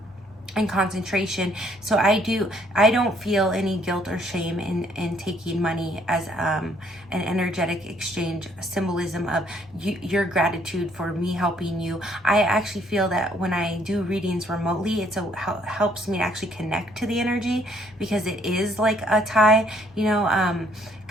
and concentration. So I don't feel any guilt or shame in taking money as an energetic exchange, symbolism of your gratitude for me helping you. I actually feel that when I do readings remotely, it helps me to actually connect to the energy, because it is like a tie,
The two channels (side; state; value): both; normal; correlation 0.66